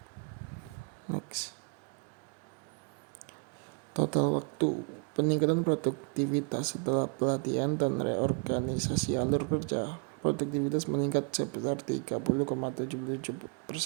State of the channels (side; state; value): left; quieter; 35.2 dB